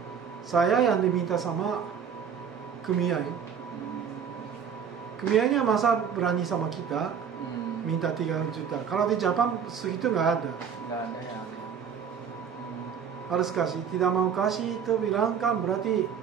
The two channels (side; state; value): left; quieter; 7.3 dB